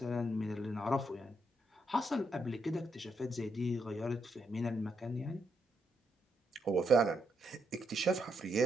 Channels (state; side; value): normal; both; correlation 0.78